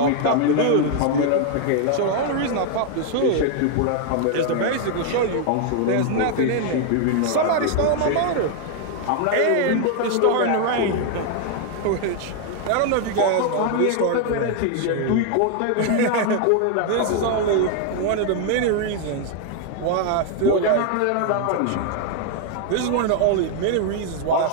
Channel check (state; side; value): different; both; correlation 0.00